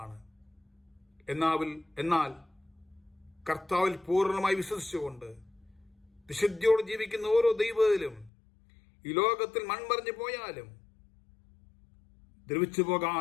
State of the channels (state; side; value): drops out; right; at 8.3 s